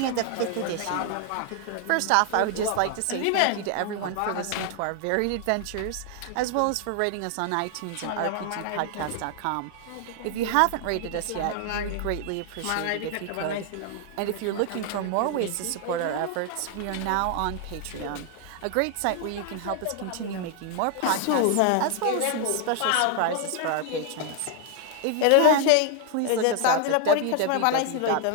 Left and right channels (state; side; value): different; both; correlation 0.00